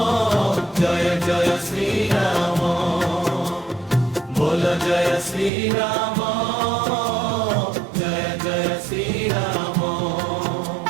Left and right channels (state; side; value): drops out; left; at 5.5 s